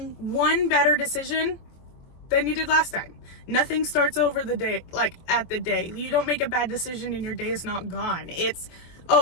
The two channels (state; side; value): late; right; 24 ms